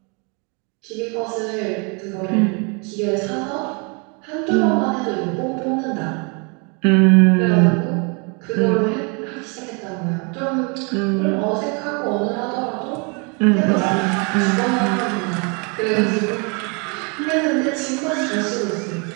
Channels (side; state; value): left; quieter; 33.7 dB